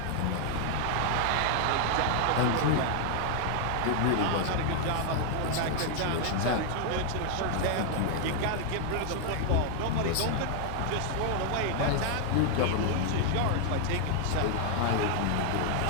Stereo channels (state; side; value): different; both; correlation 0.00